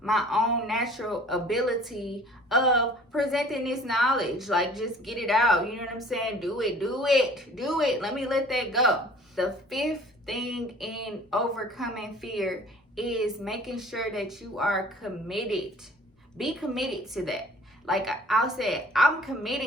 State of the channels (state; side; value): normal; both; correlation 0.50